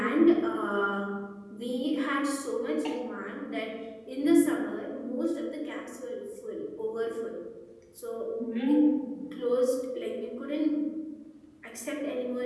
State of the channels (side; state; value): both; identical; correlation 1.00